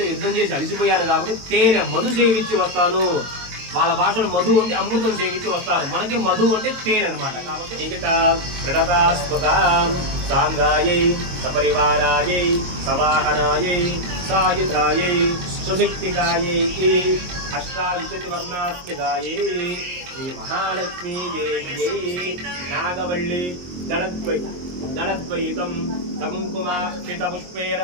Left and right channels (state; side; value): late; left; 22 ms